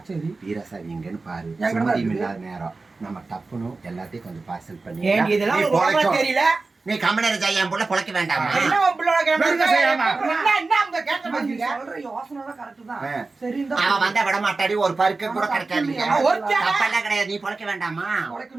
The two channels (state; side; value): quieter; left; 3.7 dB